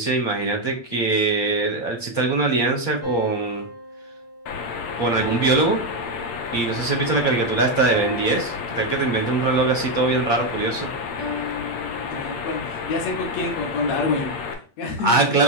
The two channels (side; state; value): right; late; 8.6 ms